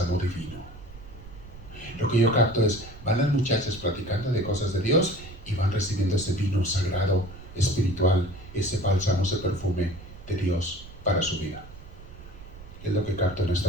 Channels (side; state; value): right; noise; rumble, 16 dB below the sound